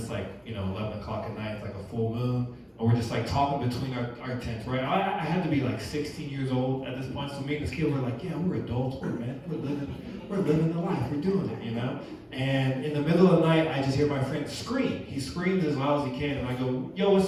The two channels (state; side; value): identical; both; correlation 1.00